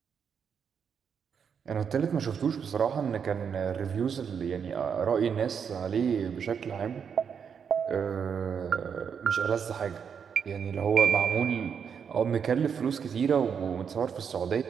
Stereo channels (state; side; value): quieter; left; 7.0 dB